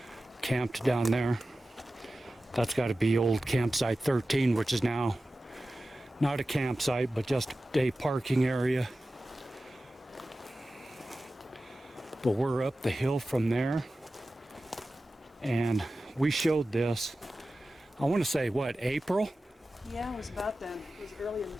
camped down there. That's got to be old campsite 13, which is now not a campsite, but just a parking area. But we're up the hill from there, and we showed this, I want to say, what, April? Yeah, it was about then. It was early in the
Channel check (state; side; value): normal; both; correlation 0.95